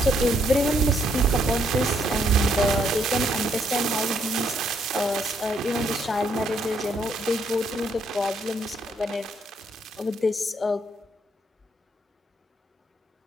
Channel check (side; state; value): both; normal; correlation 0.72